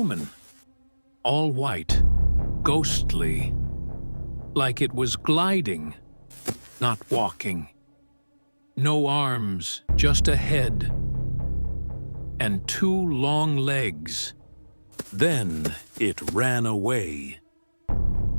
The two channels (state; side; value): inverted; both; correlation -1.00